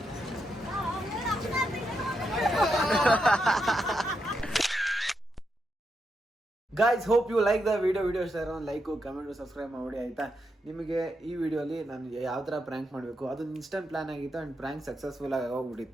Guys, hope you like the video ಇಷ್ಟ ಇರೋ ಲೈಕು, ಕಮೆಂಟು, ಸಬ್ಸ್ಕ್ರೈಬ್ ಮಾಡಿ ಆಯಿತಾ. ನಿಮಗೆ ಈ ವಿಡಿಯೋಲಿ ನಾನು ಯಾವ ಥರ ಪ್ರ್ಯಾಂಕ್ ಮಾಡಬೇಕು ಅದೊಂದು ಇನ್ಸ್ಟೆಂಟ್ ಪ್ಲಾನ್ ಆಗಿತ್ತು ಆ್ಯಂಡ್ ಪ್ರ್ಯಾಂಕ್ ಸಕ್ಸಸ್ಫುಲ್ ಆಗಿ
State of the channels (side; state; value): both; normal; correlation 0.83